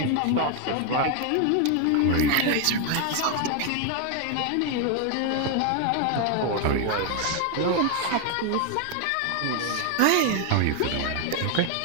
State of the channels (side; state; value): both; different; correlation 0.01